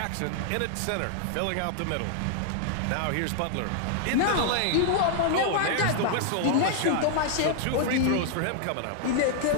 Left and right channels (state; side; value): different; both; correlation 0.00